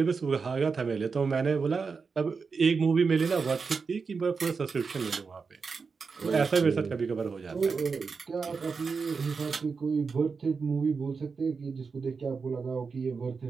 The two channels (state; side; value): quieter; left; 5.1 dB